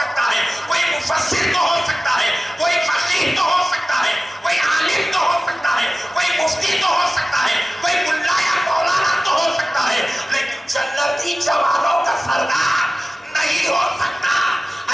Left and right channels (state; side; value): normal; both; correlation 0.96